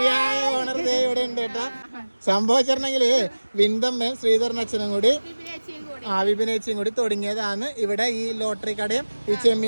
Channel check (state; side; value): inverted; both; correlation -1.00